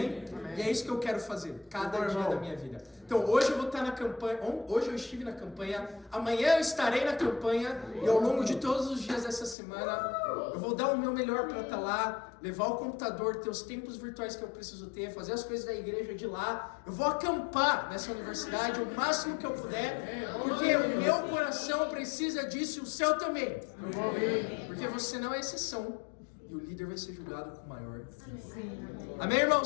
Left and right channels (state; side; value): drops out; right; at 9.6 s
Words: Amém. E é isso que eu quero fazer, cada dia da minha vida. Então, hoje eu vou estar na campanha, hoje eu estive na campanha, amanhã eu estarei na campanha, e ao longo de todos os dias dessa semana, eu vou dar o meu melhor para estar lá, levar o computador, ter os tempos virtuais que eu preciso ter, fazer as coisas da igreja de lá. Eu vou acampar nessa universidade o máximo que eu puder, porque o meu coração precisa disso e o seu também. Porque você não é exceção. E o líder vai ser julgado com maior. Amém,